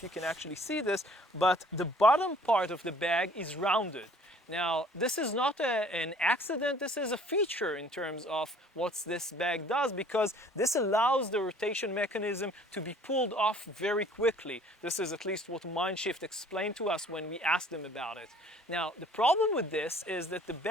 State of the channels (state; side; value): normal; both; correlation 0.55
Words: you can actually see this, but the bottom part of the bag is rounded. Now, this is not an accident, this is a feature in terms of what this bag does, because this allows the rotation mechanism to be pulled off very quickly. This is at least what Mindshift explained to us when we asked them about it. Now, the problem with this is that the